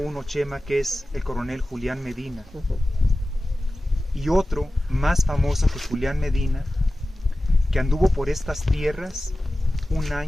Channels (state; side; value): normal; both; correlation 0.95